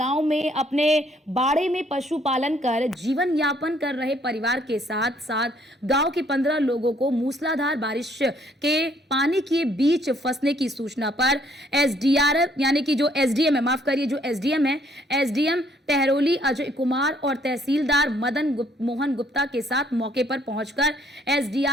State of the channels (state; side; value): normal; both; correlation 0.65